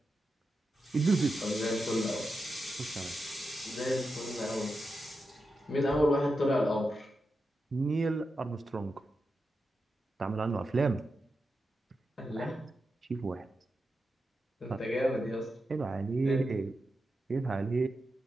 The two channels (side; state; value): both; normal; correlation 0.89